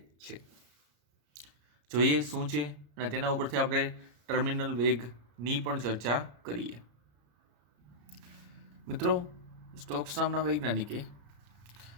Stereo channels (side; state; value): left; late; 34 ms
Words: છે. જોઈએ શું છે અને તેના ઉપરથી આપણે ટર્મિનલ વેગની પણ ચર્ચા કરીએ. મિત્રો, સ્ટોક્સ નામના વૈજ્ઞાનિકે